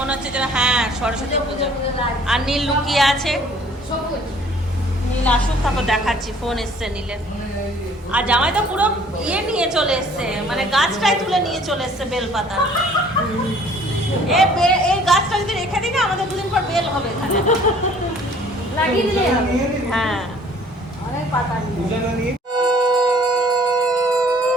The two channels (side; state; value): both; normal; correlation 0.55